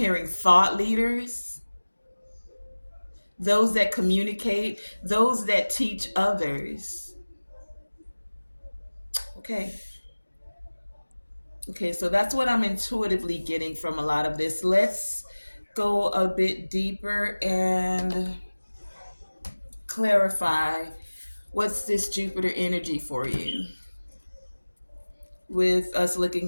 thought leaders, those that communicate, those that teach others. Okay. Okay, so that's what I'm intuitively getting from a lot of this. Let's go a bit deeper and clarify what's this Jupiter energy for you. With us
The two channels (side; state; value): both; inverted; correlation -1.00